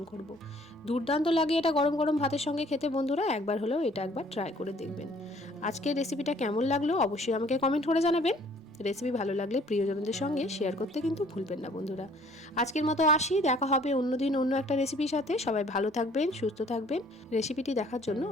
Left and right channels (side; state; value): both; normal; correlation 0.57